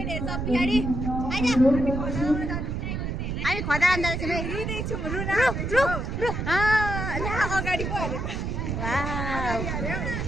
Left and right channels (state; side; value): noise; right; rumble, 3 dB below the sound